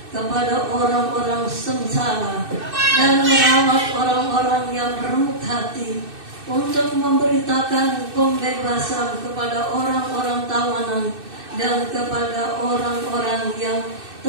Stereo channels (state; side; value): late; left; 2.6 ms